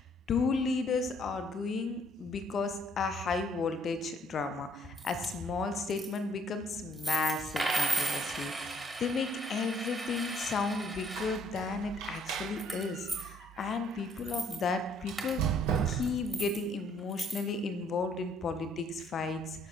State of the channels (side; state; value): both; normal; correlation 0.64